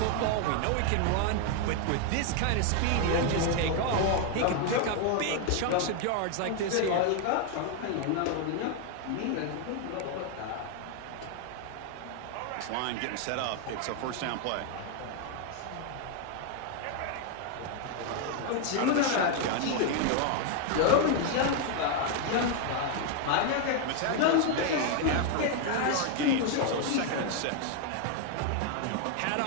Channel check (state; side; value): different; both; correlation 0.01